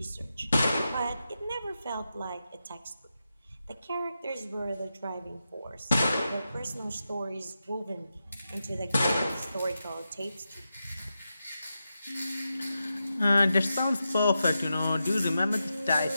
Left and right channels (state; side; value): inverted; both; correlation -0.89